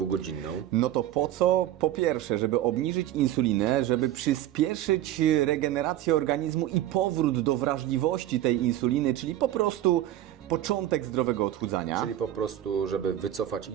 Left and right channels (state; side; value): quieter; left; 12.8 dB